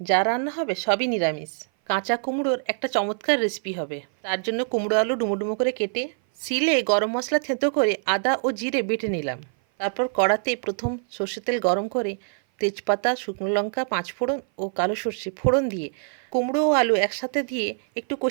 যা রান্না হবে সবই নিরামিষ। কাঁচা কুমড়োর একটা চমৎকার রেসিপি হবে। তার জন্য কুমড়ো আলু ডুমো ডুমো করে কেটে শিলে গরম মশলা থেঁতো করে আদা ও জিরে বেটে নিলাম। তারপর কড়াতে প্রথম সর্ষের তেল গরম করে তেজপাতা, শুকনো লঙ্কা, পাঁচফোড়ন ও কালো সর্ষে ফোড়ন দিয়ে কুমড়ো ও আলু একসাথে দিয়ে একটু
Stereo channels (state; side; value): silent; left; 57 dB below the other